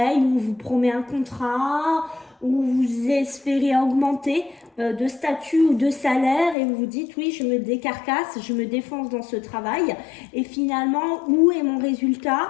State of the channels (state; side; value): drops out; right; at 6.6 s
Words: ou on vous promet un contrat, ou vous espérez augmenter de statut ou de salaire et vous vous dites oui, je me décarcasse, je me défonce dans ce travail et finalement, où est mon résultat?